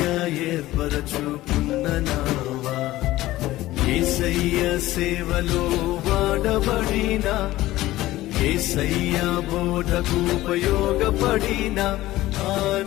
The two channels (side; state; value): right; quieter; 16.5 dB